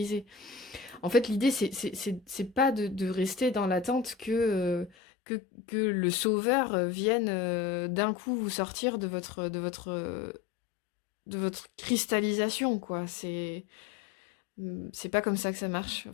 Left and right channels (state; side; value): drops out; right; at 4.9 s